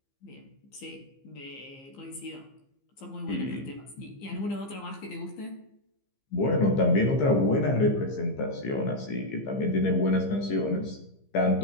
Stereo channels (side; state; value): right; late; 15 ms